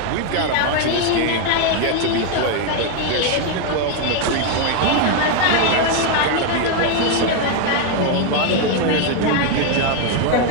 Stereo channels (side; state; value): both; different; correlation 0.01